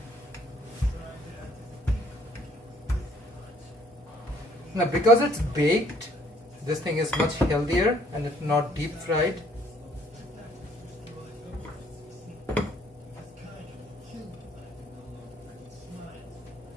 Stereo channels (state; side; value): normal; both; correlation 0.62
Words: Now, because it's baked, this thing is much healthier and it's not deep fried.